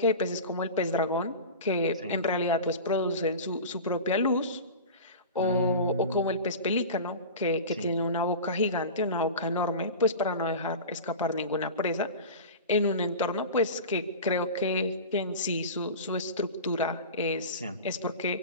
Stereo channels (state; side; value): inverted; both; correlation -0.31